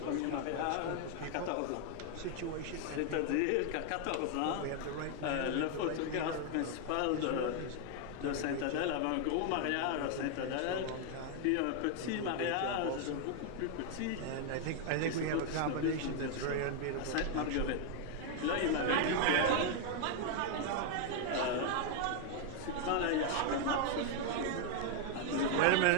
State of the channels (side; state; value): both; different; correlation 0.00